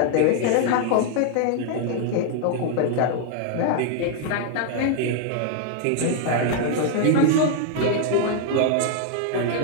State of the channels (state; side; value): different; both; correlation 0.00